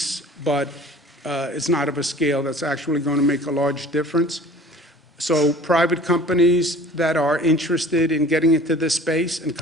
but it's not of a scale that's actually going to make a large difference. So private companies that are interested in getting into this space and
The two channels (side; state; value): both; normal; correlation 0.46